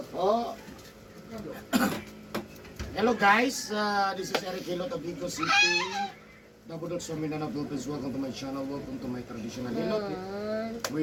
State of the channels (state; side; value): identical; both; correlation 1.00